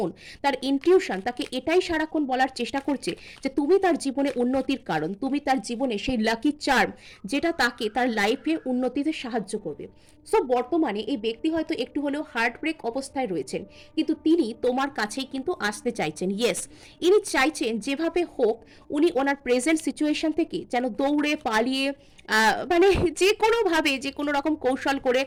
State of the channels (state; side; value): identical; both; correlation 1.00